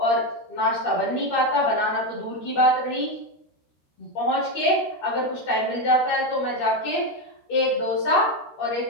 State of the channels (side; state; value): right; late; 13 ms